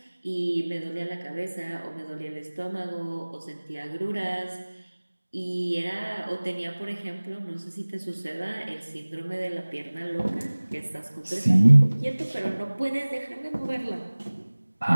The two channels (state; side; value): inverted; both; correlation -1.00